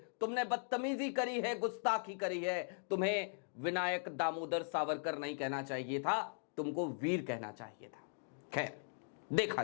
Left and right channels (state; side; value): silent; right; digital silence